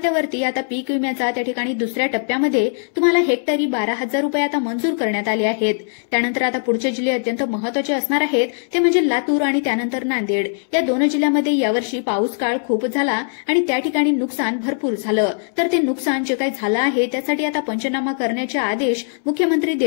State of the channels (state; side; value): silent; right; 66 dB below the other